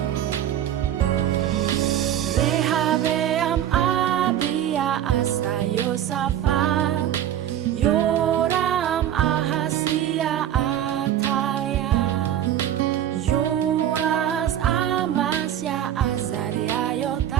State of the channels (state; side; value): quieter; left; 11.0 dB